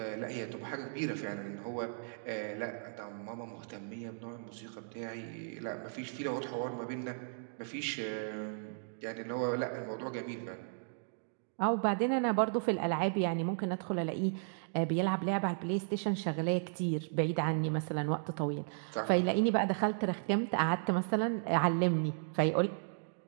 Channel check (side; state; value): left; silent; digital silence